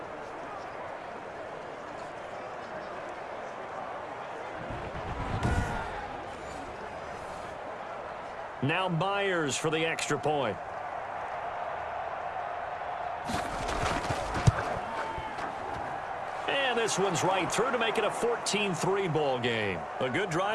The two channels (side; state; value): both; identical; correlation 1.00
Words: Now Myers for the extra point. And this one's right through to make it a 14-3 ball game. A good